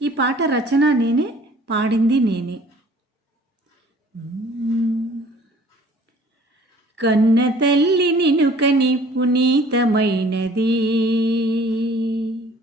ఈ పాట రచన నేనే, పాడింది నేనే. కన్న తల్లి నిన్ను కని పునీతమైనది,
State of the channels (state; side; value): normal; both; correlation 0.53